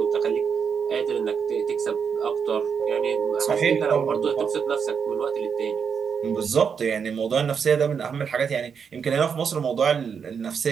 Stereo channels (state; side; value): quieter; left; 6.7 dB